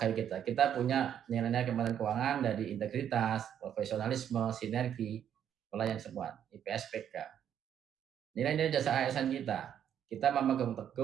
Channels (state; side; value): quieter; left; 9.4 dB